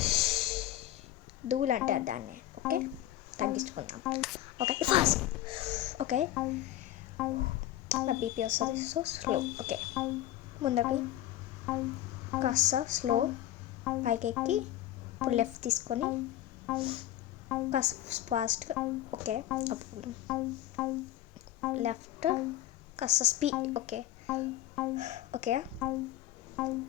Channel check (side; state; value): right; quieter; 13.5 dB